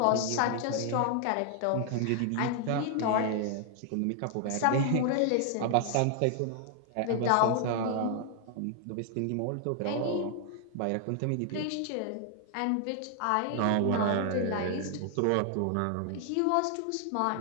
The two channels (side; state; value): both; different; correlation 0.00